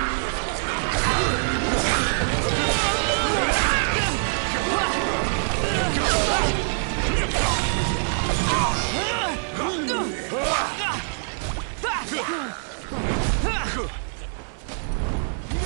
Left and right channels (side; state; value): left; silent; 62 dB below the other